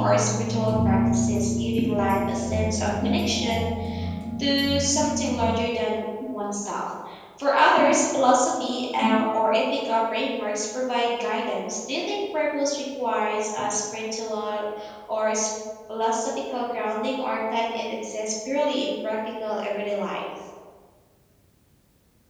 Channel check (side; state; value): both; identical; correlation 1.00